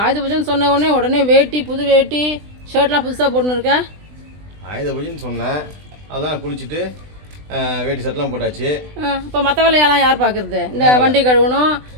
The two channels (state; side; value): late; left; 20 ms